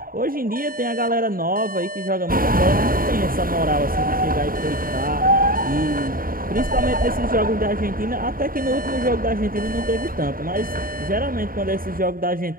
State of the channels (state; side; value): late; left; 0.41 ms